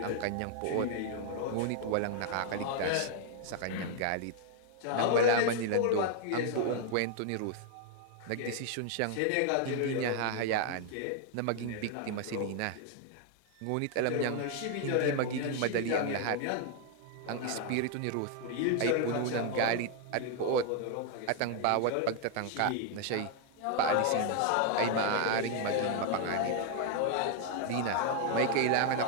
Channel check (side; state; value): both; different; correlation 0.00